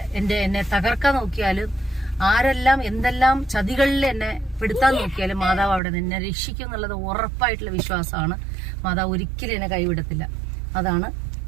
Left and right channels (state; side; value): drops out; left; at 5.8 s